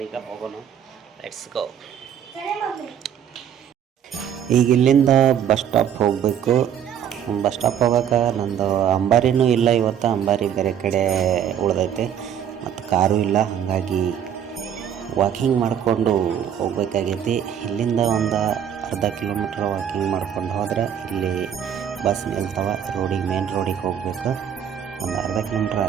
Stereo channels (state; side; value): quieter; left; 9.1 dB